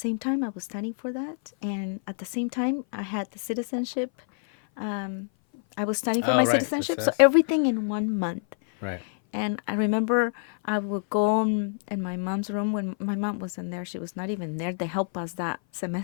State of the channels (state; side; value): silent; right; 57 dB below the other